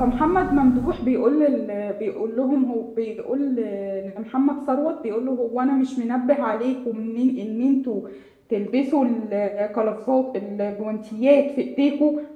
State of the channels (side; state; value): both; identical; correlation 1.00